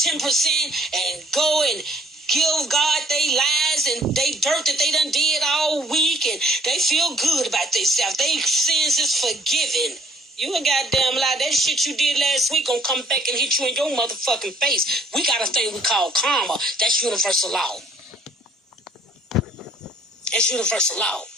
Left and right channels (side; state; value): both; normal; correlation 0.60